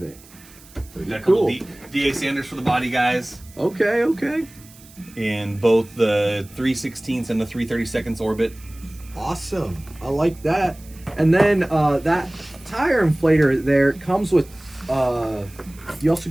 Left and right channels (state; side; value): noise; right; hiss, 23 dB below the sound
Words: Got a couple DA sanders for the body guys. Okay. In both the 3/16 and the 3/32 orbit. Awesome. I like that. And then that tire inflator there comes with you also